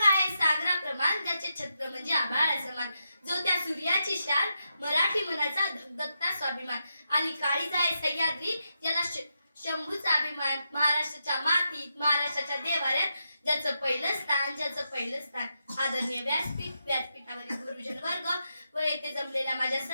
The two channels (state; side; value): inverted; both; correlation -0.85